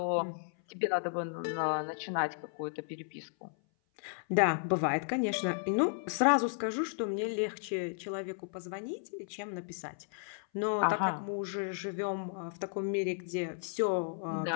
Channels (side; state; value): right; silent; 55 dB below the other